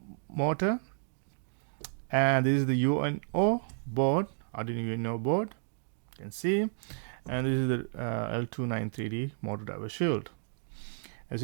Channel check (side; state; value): left; silent; digital silence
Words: and this is the Uno board, Arduino Uno board, you can see, and this is the L293D motor driver shield. As